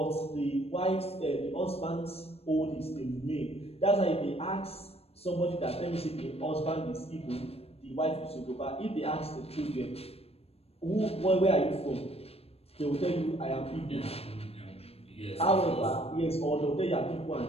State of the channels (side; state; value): right; late; 0.29 ms